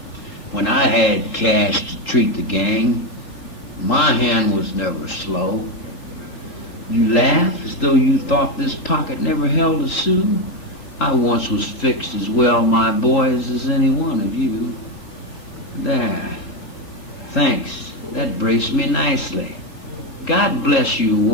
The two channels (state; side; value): late; right; 3.4 ms